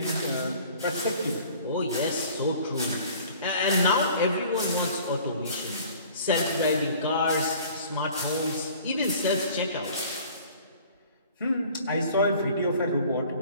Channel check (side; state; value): both; inverted; correlation -0.49